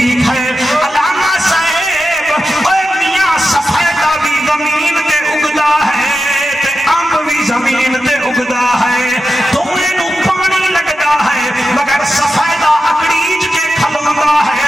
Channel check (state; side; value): normal; both; correlation 0.90